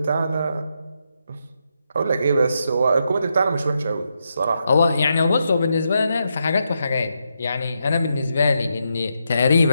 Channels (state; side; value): inverted; both; correlation -0.82